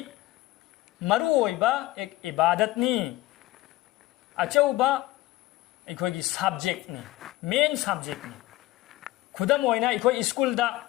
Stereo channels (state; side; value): quieter; right; 17.5 dB